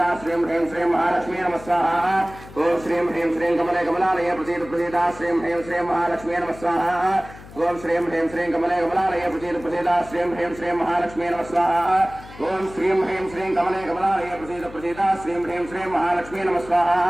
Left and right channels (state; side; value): noise; left; hum, 18 dB below the sound